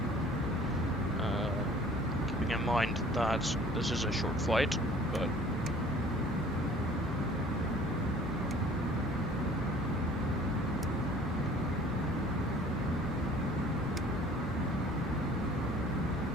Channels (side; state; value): both; normal; correlation 0.51